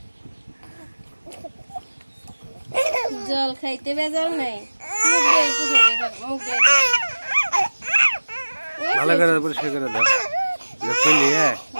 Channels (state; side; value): inverted; both; correlation -1.00